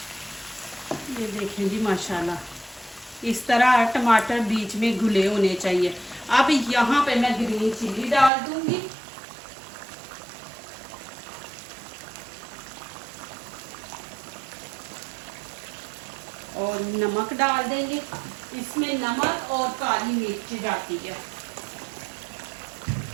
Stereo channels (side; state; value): left; drops out; at 8.3 s